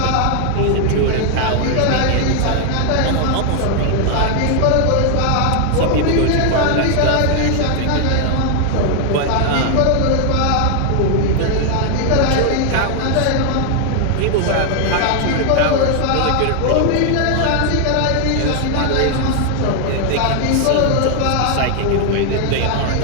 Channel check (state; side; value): different; both; correlation 0.00